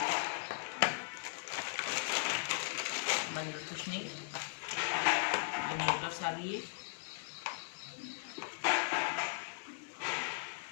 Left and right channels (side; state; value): right; silent; 52 dB below the other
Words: अंदर कुछ नहीं, ये मोटर्स आ गई है।